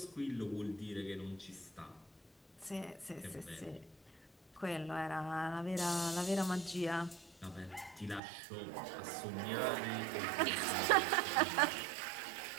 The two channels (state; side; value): drops out; left; at 8.2 s